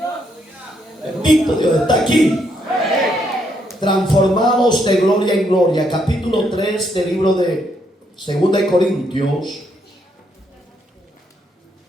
Bendito Dios, está aquí. Transformados de gloria en gloria. Capítulo 3 del libro de 2 de Corintios.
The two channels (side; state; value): both; normal; correlation 0.75